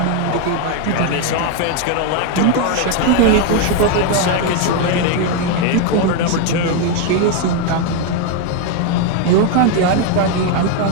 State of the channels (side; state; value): both; different; correlation 0.01